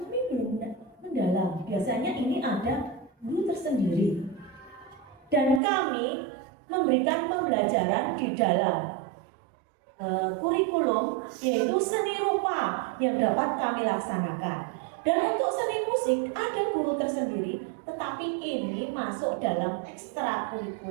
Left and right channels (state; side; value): drops out; left; at 5.6 s